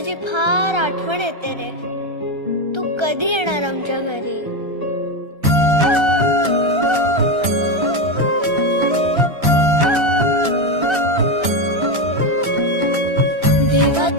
फार आठवण येते रे. तू कधी येणार आमच्या घरी? देवा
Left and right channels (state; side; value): late; left; 1.3 ms